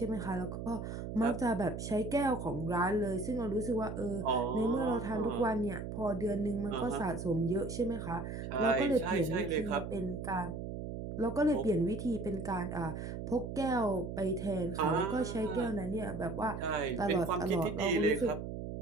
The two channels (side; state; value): right; noise; hum, 6 dB below the sound